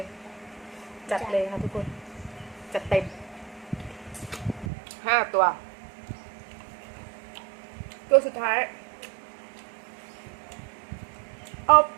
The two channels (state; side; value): drops out; left; at 4.7 s